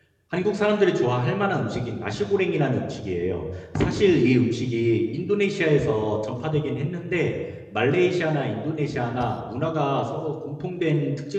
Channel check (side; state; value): both; identical; correlation 1.00